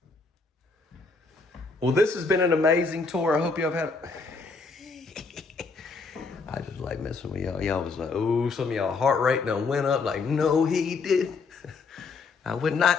Well, this has been an amazing tour. I hope y'all have had. I just like messing with y'all. Y'all was like, oh, some of y'all heart rate done went up. Like, no, he did. I would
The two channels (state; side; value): quieter; right; 4.3 dB